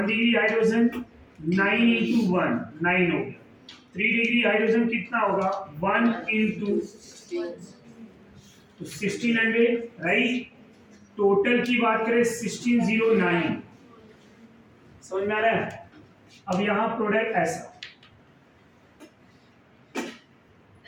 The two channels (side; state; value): both; identical; correlation 1.00